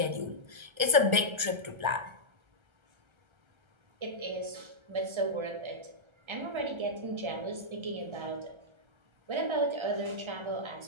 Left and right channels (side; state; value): left; late; 1.3 ms